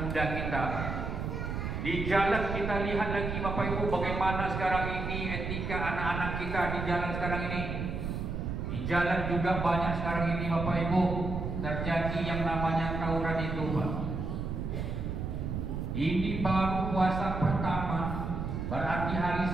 muda kita. Di jalan kita lihat lagi Bapak Ibu bagaimana sekarang ini etika anak-anak kita di jalan sekarang ini. Di jalan juga banyak sekarang ini Bapak Ibu terjadi yang namanya tawuran itu Pak. Ini baru puasa pertama, berarti hari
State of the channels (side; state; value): right; noise; rumble, 3 dB below the sound